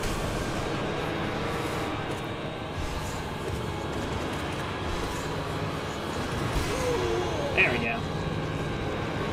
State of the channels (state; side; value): identical; both; correlation 1.00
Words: There we go.